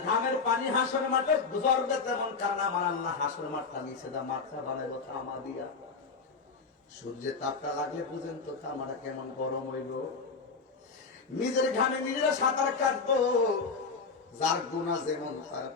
ঘামের পানি হাসর মাঠে গুজরবে তেমন, কারণ আমার আল্লাহ হাসর মাঠটা নিচে দা মাথা বানাইব তামা দিয়া। সূর্যের তাপটা লাগলে বুঝেন তো তামাটা কেমন গরম হইল। নিজের ঘামে নিজেরা সাঁতার কাটবো, যার গুনাহ যেমন তার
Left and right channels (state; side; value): quieter; right; 4.7 dB